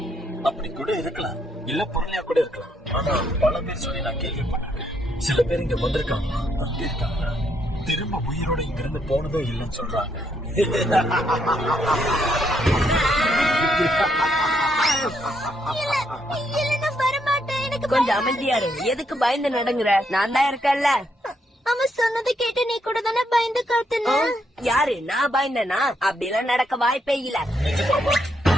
அப்படி கூட இருக்கலாம், இல்ல பொருளையா கூட இருக்கலாம். ஆனா பல பேர் சொல்லி நான் கேள்விப்பட்டிருக்கேன். சில பேர் இங்க வந்திருக்காங்க, இருக்காங்க, திரும்ப உயிரோட இங்க இருந்து போனதும் இல்லைன்னு சொல்றாங்க. கொஞ்சம் அமைதியா இரு. எதுக்கு பயந்து நடங்குற? நான் தான் இருக்கேன்ல. அவன் சொன்னதை கேட்டு நீ கூட தானே பயந்து காத்துன? யாரு? நான் பயந்தனா? அப்படிலாம் நடக்க வாய்ப்பே இல்ல.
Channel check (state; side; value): normal; both; correlation 0.75